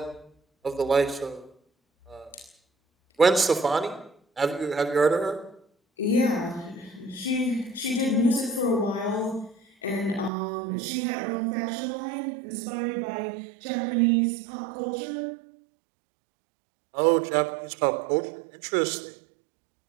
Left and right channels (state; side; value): drops out; left; at 10.3 s